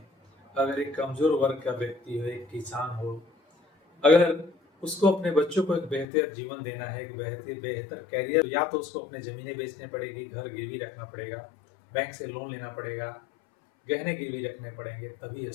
अगर एक कमज़ोर वर्ग का व्यक्ति हो, एक किसान हो, अगर उसको अपने बच्चों को एक बेहतर जीवन देना है, एक बेहतर बेहतर करियर, या तो उसको अपने ज़मीनें बेचनी पड़ेगी, घर गिरवी रखना पड़ेगा, बैंक से लोन लेना पड़ेगा, गहने गिरवी रखने पड़ेंगे, तभी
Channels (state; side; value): drops out; right; at 6.1 s